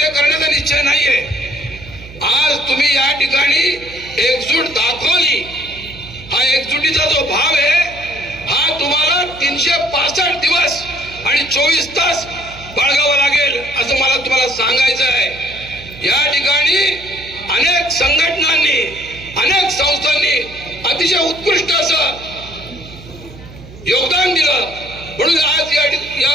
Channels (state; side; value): noise; right; hum, 18 dB below the sound